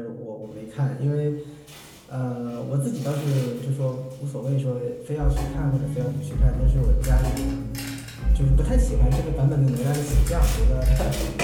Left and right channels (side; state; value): both; identical; correlation 1.00